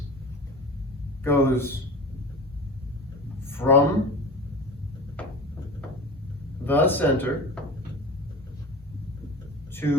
goes from the center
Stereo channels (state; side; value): normal; both; correlation 0.33